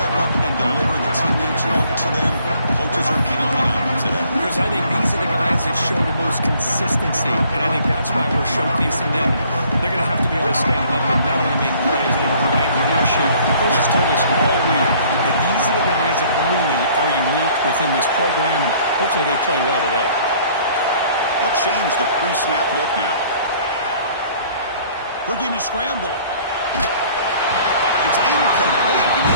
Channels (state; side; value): inverted; both; correlation -0.57